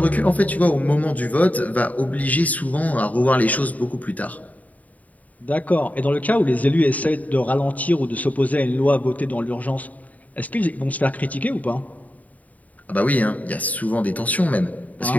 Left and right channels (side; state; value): right; late; 0.073 ms